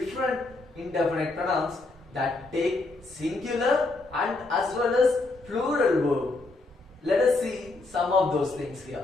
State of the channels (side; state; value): right; quieter; 3.2 dB